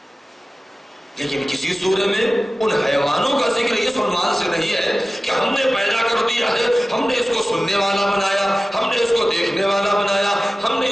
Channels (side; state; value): both; normal; correlation 0.96